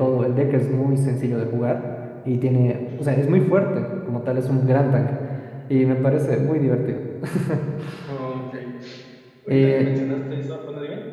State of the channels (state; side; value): identical; both; correlation 1.00